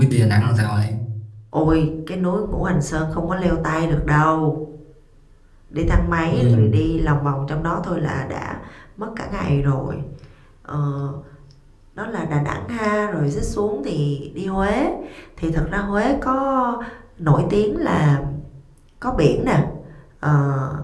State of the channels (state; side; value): identical; both; correlation 1.00